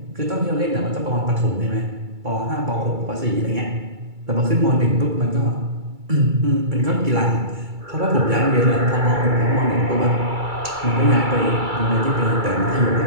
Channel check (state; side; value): late; left; 2.3 ms